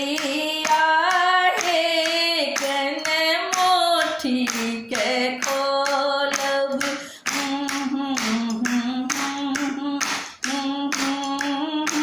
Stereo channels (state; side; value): identical; both; correlation 1.00